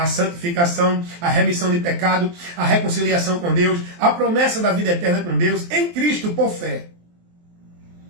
santificação, a remissão de pecado, a reconciliação com Deus, a promessa da vida eterna com Deus, em Cristo por fé.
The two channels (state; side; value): late; left; 23 ms